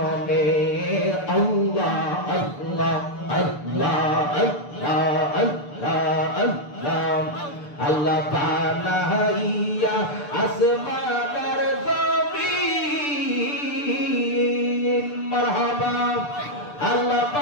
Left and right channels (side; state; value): right; late; 6.8 ms